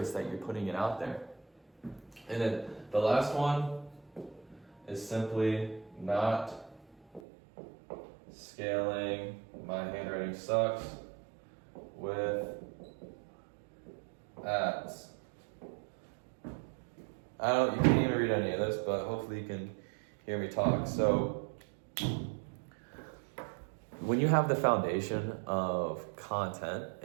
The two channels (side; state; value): left; drops out; at 7.2 s